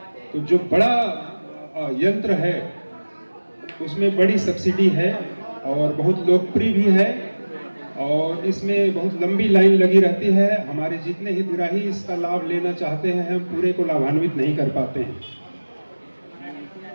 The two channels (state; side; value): inverted; both; correlation -1.00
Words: तो जो बड़ा यंत्र है उसमें बड़ी सब्सिडी है और बहुत लोकप्रिय भी है और इसमें बहुत लंबी लाइन लगी रहती है। हमारे जितने हितग्राही इसका लाभ लेना चाहते हैं, हम पूरे को लाभान्वित नहीं कर पाते हैं।